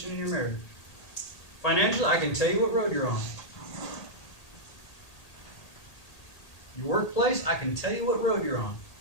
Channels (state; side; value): late; right; 1.8 ms